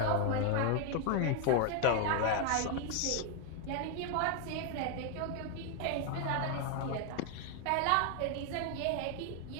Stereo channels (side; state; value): both; different; correlation 0.01